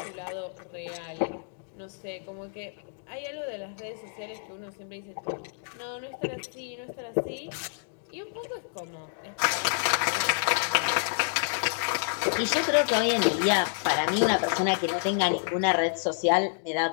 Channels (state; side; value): silent; right; digital silence